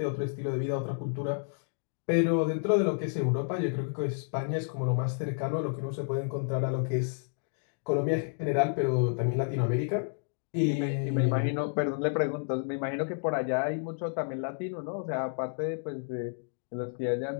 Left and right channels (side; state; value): right; silent; digital silence